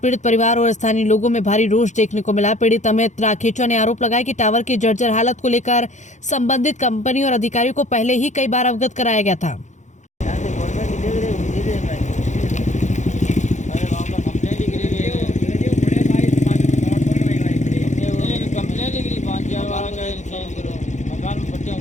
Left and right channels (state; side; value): late; right; 0.35 ms